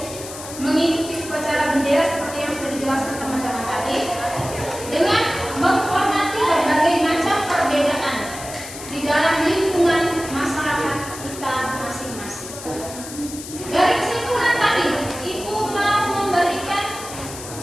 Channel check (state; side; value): noise; left; hiss, 12 dB below the sound